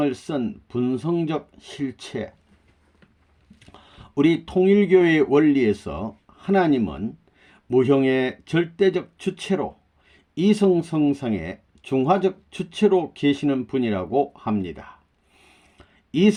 쓴 분성적 실체. 우리 통일교의 원리에서 하나님은 무형의 절대적 주체로 이성성상의 중화적 주체로 계시는 분이라고 합니다.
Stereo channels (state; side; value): identical; both; correlation 1.00